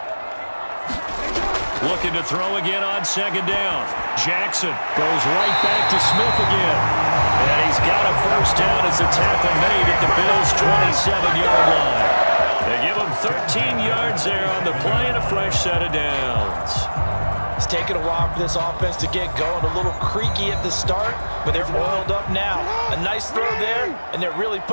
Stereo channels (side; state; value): both; inverted; correlation -1.00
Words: Looking to throw again on 2nd down. Jackson goes right back to Smith again. And he's got a 1st down as the tackle made at the Bills' 27-yard line. They give him 13 yards there on the play and a fresh set of downs. It's taken a while for this offense to get going. A little creaky at the start, but they're oiled up now. A nice throw there, and they're really